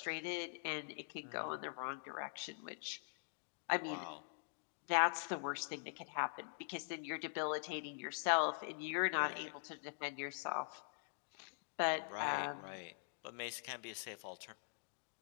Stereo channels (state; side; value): silent; right; digital silence